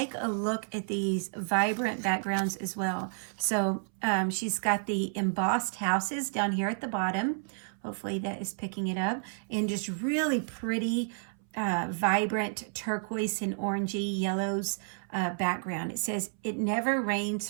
a look at these vibrant backgrounds as well. So she's got the embossed houses down here at the bottom. Hopefully that is picking it up. And just really pretty, vibrant turquoise and orangey yellows background. It says, "It never rains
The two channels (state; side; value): silent; left; 57 dB below the other